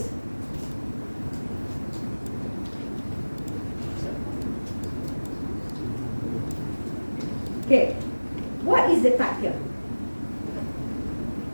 Okay, what is the type here?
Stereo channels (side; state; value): both; inverted; correlation -1.00